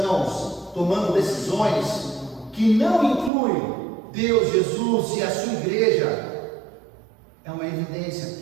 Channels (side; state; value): left; drops out; at 3.3 s